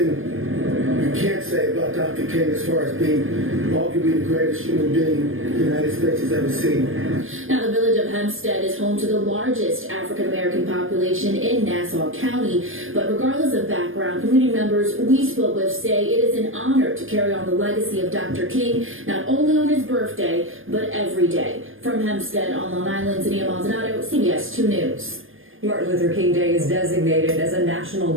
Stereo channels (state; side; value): late; left; 0.59 ms